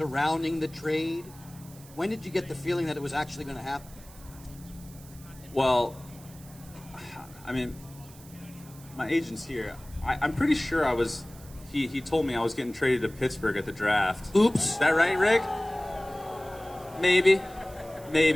the trade. When did you get the feeling that it was actually going to happen? Well, I mean, my agent's here. I'm pretty sure I was. He told me I was getting traded to Pittsburgh at the draft. Oops. Is that right, Rick? Maybe.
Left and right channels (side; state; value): right; noise; hiss, 21 dB below the sound